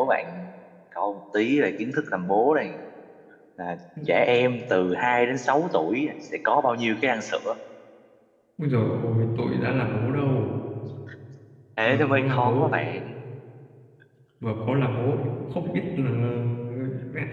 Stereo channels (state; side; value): identical; both; correlation 1.00